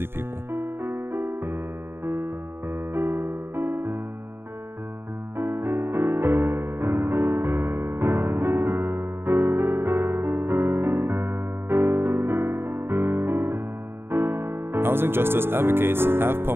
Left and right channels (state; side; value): late; left; 0.11 ms